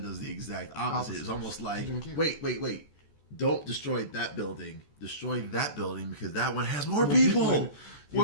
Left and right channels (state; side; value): late; right; 14 ms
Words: does the exact opposite. It's almost like, wait. Don't destroy that building. Destroy that building because that one has more people.